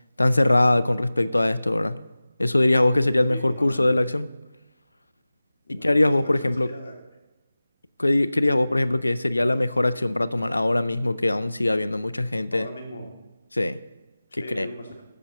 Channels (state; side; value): inverted; both; correlation -0.97